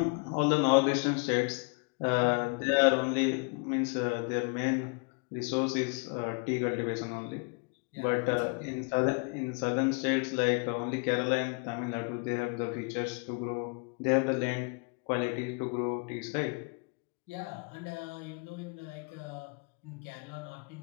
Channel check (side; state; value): right; quieter; 34.6 dB